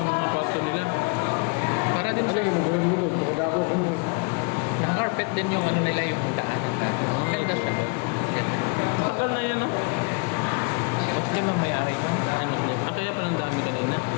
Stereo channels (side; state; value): right; quieter; 34.3 dB